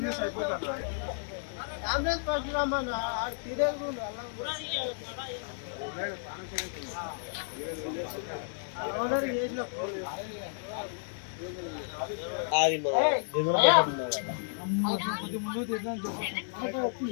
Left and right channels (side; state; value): right; silent; digital silence